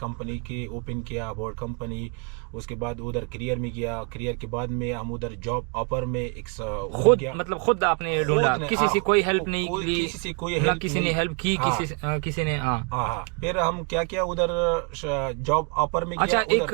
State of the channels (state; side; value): quieter; left; 35.4 dB